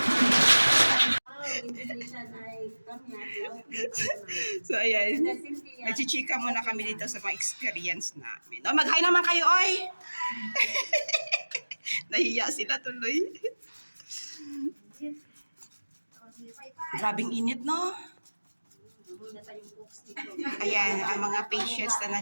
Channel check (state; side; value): inverted; both; correlation -1.00